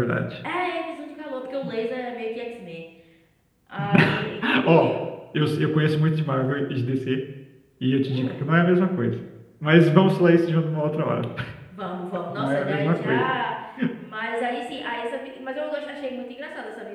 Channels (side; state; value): both; identical; correlation 1.00